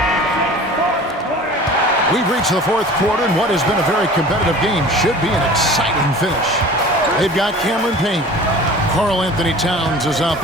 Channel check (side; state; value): both; normal; correlation 0.42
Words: We've reached the fourth quarter, and what has been a very competitive game should be an exciting finish. They've got Cameron Payne. Karl Anthony Towns is out